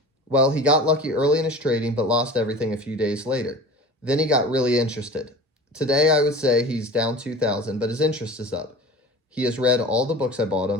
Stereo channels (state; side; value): normal; both; correlation 0.38